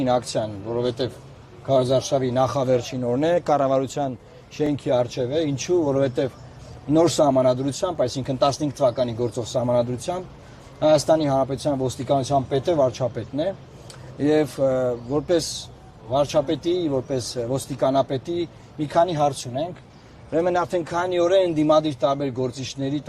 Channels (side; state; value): both; identical; correlation 1.00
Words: ակցիան, որովհետև Քարոզարշավի նախավերջին օրն է, կառավարության շենքի առջև է, ինչու, որովհետև նոր սահմանադրությամբ, այսինքն 15 թվականի գործող սահմանադրությամբ Հայաստանի Հանրապետության ոստիկանության պետը վարչապետն է եւ որպես վարչապետի, որպես ոստիկանապետի մի քանի հարց ունենք։ Ուրեմն արդեն քանի օր է ընդդիմադիր տարբեր գործիչների,